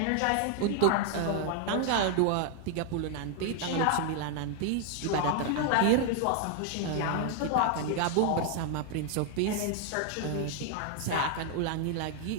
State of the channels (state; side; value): different; both; correlation 0.00